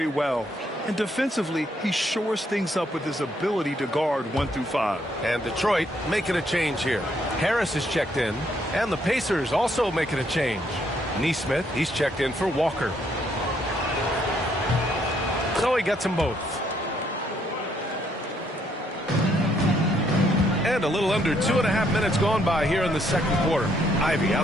well. And defensively, he shores things up with his ability to guard 1 through 5. And Detroit making a change here. Harris is checked in. And the Pacers also making a change. Nesmith, he's checked in for Walker. So he gets them both. And a little under 2.5 minutes gone by here in the second quarter. Ivy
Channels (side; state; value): both; normal; correlation 0.71